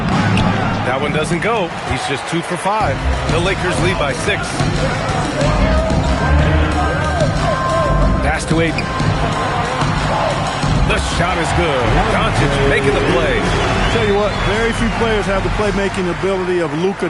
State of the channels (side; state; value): both; identical; correlation 1.00